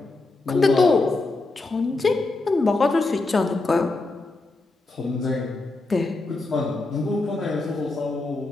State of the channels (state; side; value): quieter; right; 3.2 dB